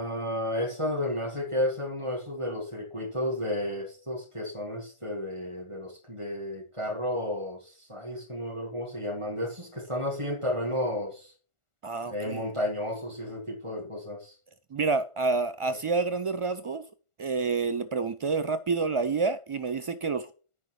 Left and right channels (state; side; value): late; left; 1.4 ms